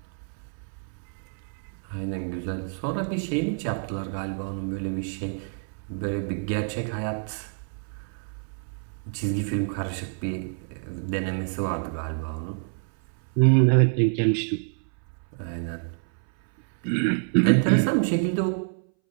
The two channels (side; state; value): left; silent; 60 dB below the other